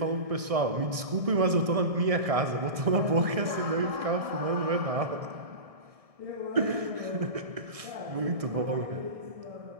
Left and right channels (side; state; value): left; late; 1.6 ms